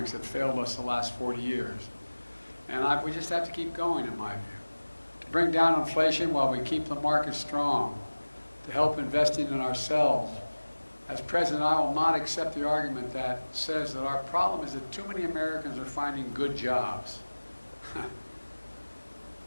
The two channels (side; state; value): both; inverted; correlation -1.00